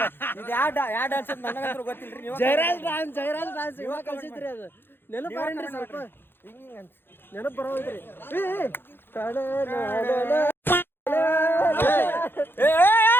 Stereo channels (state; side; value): late; right; 0.10 ms